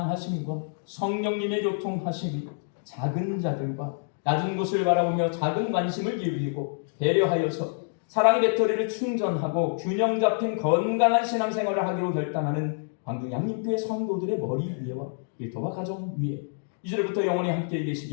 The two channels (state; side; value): silent; right; digital silence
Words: 성령님의 교통하심이 작은 자들과 낮은 곳을 바라보며 작은 관심을 기울이고 배려하여서 사랑의 배터리를 충전하고 균형 잡힌 건강한 신앙생활을 하기로 결단하는 광주 양림교회 성도들의 머리 위에와 일터와 가정 위에 이제부터 영원히 함께